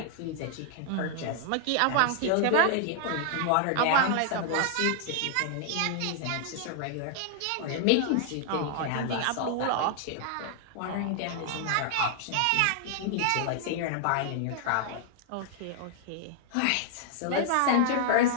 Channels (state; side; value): different; both; correlation 0.00